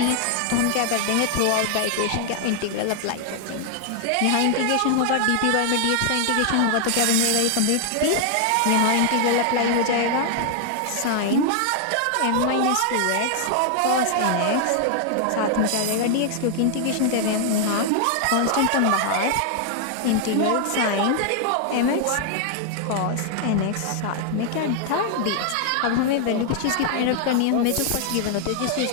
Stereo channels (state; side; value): different; both; correlation 0.00